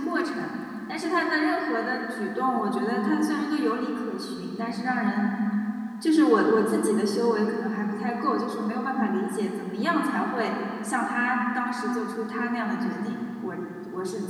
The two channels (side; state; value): both; identical; correlation 1.00